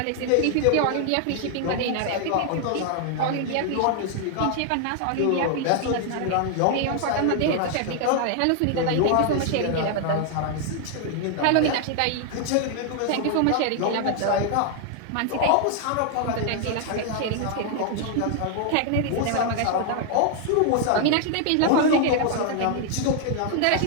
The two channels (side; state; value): both; different; correlation 0.00